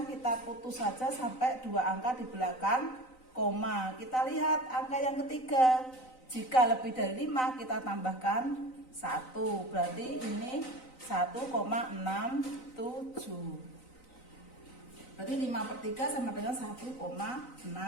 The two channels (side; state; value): right; late; 3.9 ms